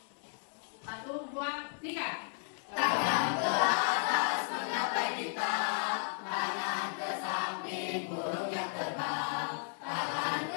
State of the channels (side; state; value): right; silent; 55 dB below the other